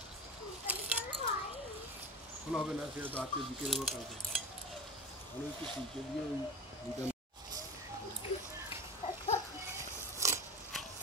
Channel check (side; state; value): both; normal; correlation 0.28